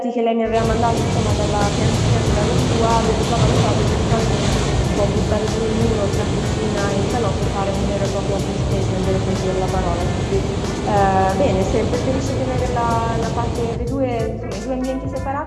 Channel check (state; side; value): identical; both; correlation 1.00